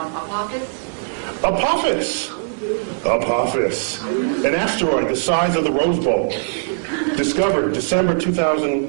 Apophis, an asteroid the size of the Rose Bowl, discovered December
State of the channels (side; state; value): left; silent; digital silence